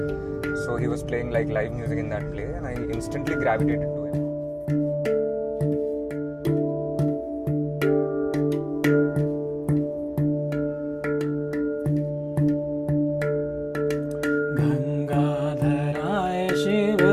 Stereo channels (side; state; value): both; identical; correlation 1.00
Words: So he was playing like live music in that play, and I instantly gravitated to him. गंगाधराय Shiv